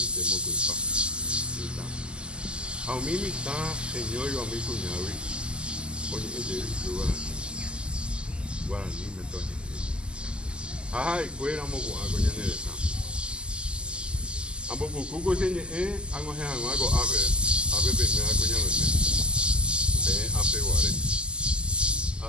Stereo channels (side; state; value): left; late; 0.049 ms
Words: mokoipa. Mitã. Ha umi mitã heñóiva umi kuñágui oñe'ẽjey Guarani metoñe'ẽ. Ha ha'ekuéra moko'ãko ñane retã. Ambopukúko cheñe'ẽ ag̃uahẽhag̃ua ko ápe peimíva kuñameme. Peẽ ápe guare.